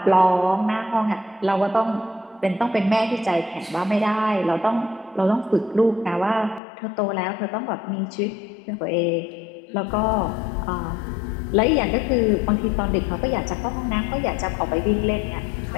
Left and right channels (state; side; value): drops out; right; at 6.6 s